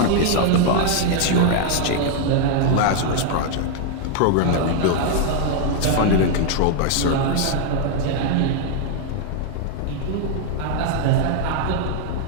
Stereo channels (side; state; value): both; different; correlation 0.00